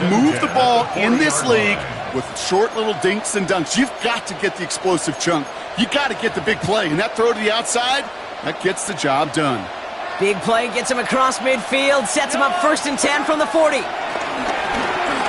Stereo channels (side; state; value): both; identical; correlation 1.00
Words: move the ball in this league with short little dinks and dunks. You've got to get the explosive chunk. You got to get the big play. And that throw to the outside, that gets the job done. Big play gets him across midfield. Sets him up first and 10 from the 40.